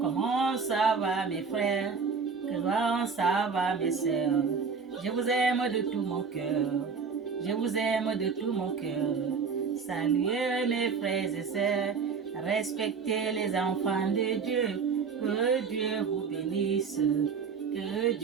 Comment ça va mes frères? Comment ça va mes sœurs? Je vous aime de tout mon cœur. Je vous aime de tout mon cœur. Saluez mes frères et sœurs. Respectez les enfants de Dieu. Que Dieu vous bénisse. Que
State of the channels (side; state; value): left; quieter; 5.5 dB